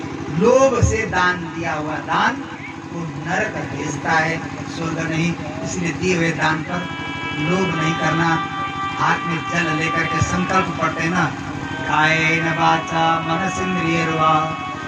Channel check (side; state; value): both; identical; correlation 1.00